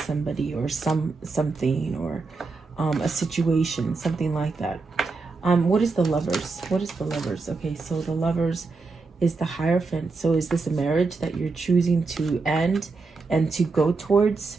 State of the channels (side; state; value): left; quieter; 4.1 dB